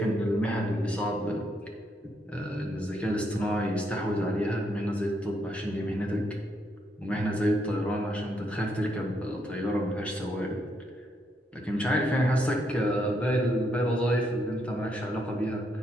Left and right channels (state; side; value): normal; both; correlation 0.76